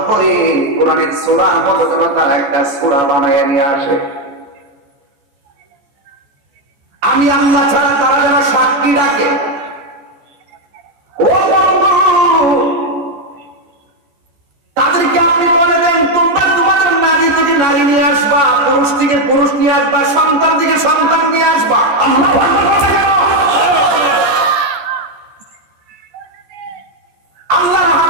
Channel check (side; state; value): left; late; 14 ms